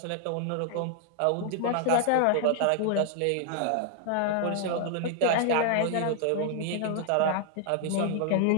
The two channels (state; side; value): different; both; correlation 0.00